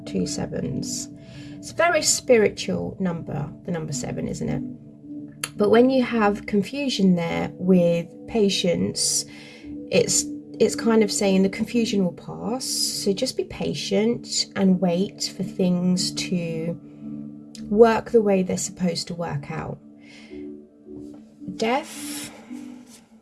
two sevens? It's a very spiritual number, the number 7, isn't it? But when you have confusion there with patience, it's kind of saying the confusion will pass. So just be patient and wait for things to work the way they're supposed to work out. Death.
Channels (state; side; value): identical; both; correlation 1.00